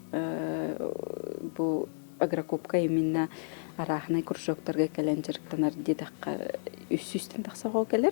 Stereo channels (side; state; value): right; silent; digital silence